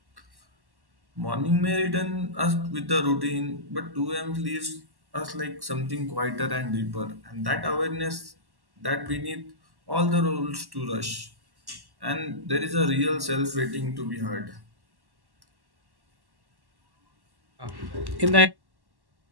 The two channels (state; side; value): late; left; 1.1 ms